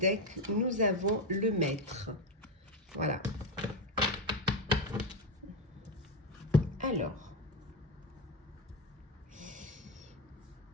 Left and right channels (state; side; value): normal; both; correlation 0.12